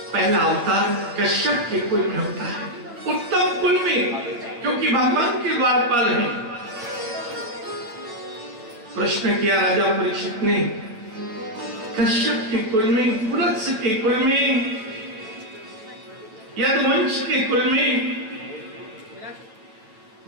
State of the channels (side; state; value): left; late; 9.2 ms